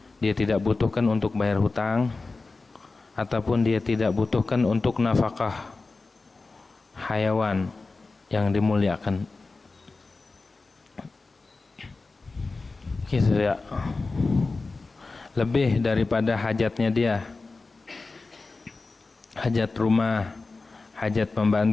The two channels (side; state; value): right; quieter; 3.7 dB